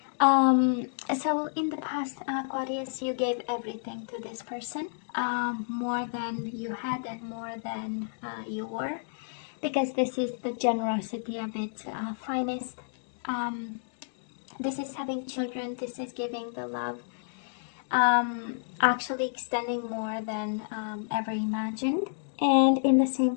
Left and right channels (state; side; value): silent; right; digital silence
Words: So in the past, Aquarius, you gave everything to this person, more than you had and more than you were, because this is the generosity of its finest. This is having children, this is giving the love, actually extending more than ever imagined. And in the